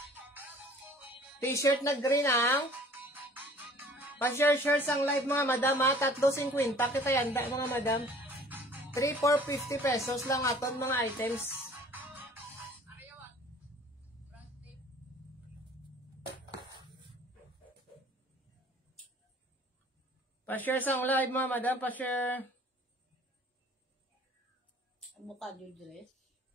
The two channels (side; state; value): both; normal; correlation 0.50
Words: T-shirt na green ang pa-share ang live mga madam ha, 3.50 kita yanda mga madam. 3-4.50 pesos lang aton mga items. Pa-share ang live mga madam, pa-share. Avocado dress.